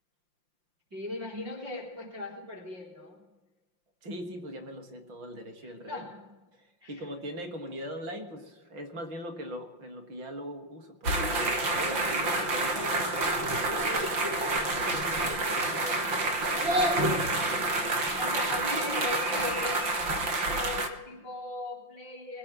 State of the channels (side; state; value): left; late; 5.7 ms